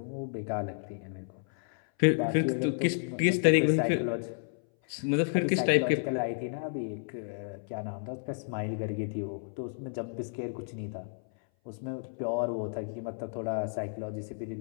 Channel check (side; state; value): right; silent; 57 dB below the other